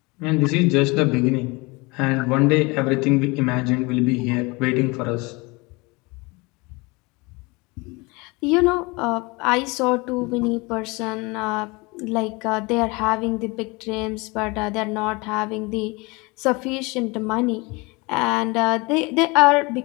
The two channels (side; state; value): right; quieter; 25.8 dB